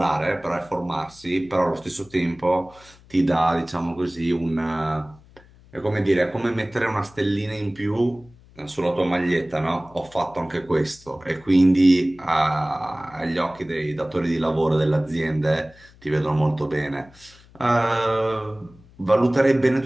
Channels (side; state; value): left; noise; hum, 25 dB below the sound